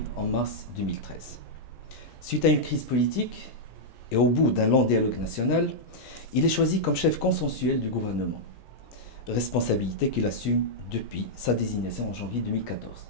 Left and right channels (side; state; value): right; late; 17 ms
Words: en mars 2013. Suite à une crise politique et au bout d'un long dialogue national, il est choisi comme chef consensuel du gouvernement, responsabilité qu'il assume depuis sa désignation en janvier 2014.